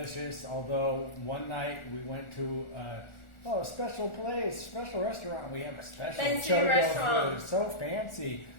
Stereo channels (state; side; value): late; right; 1.4 ms